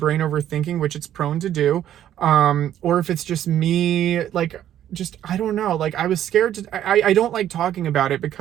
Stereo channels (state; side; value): quieter; left; 11.2 dB